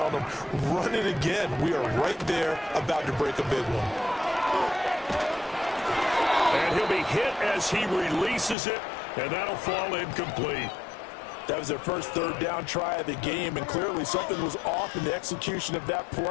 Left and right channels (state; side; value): drops out; right; at 8.6 s